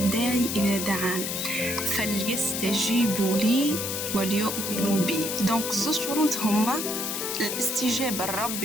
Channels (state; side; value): noise; left; hiss, 3 dB below the sound